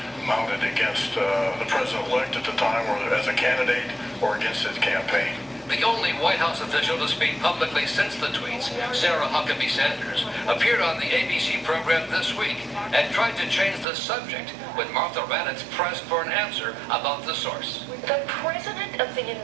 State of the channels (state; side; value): drops out; left; at 13.9 s